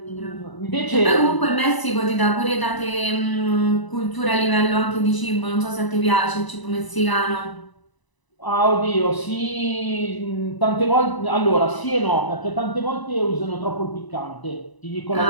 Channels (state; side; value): late; right; 1.0 ms